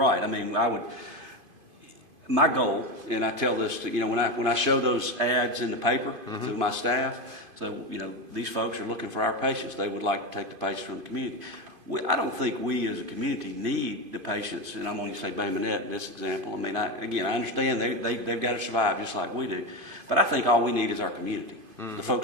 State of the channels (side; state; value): left; late; 2.5 ms